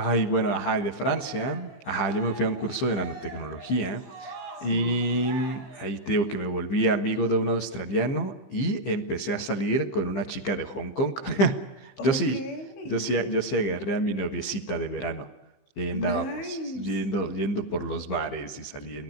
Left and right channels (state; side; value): late; right; 15 ms